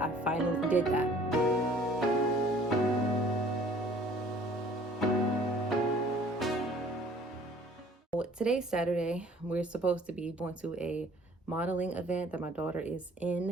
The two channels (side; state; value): both; normal; correlation 0.53